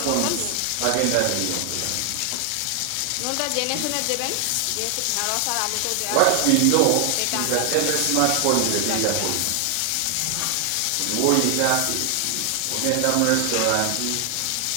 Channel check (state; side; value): different; both; correlation 0.00